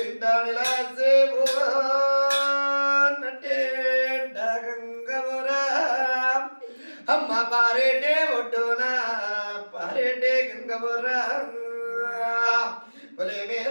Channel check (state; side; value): inverted; both; correlation -1.00